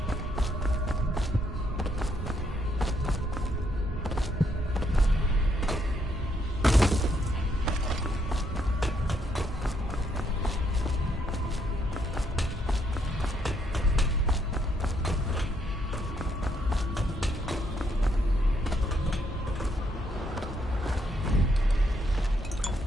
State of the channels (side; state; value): both; normal; correlation 0.73